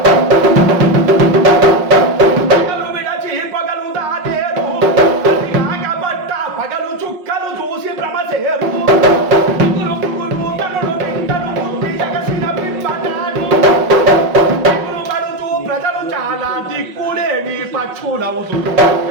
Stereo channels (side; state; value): left; late; 5.5 ms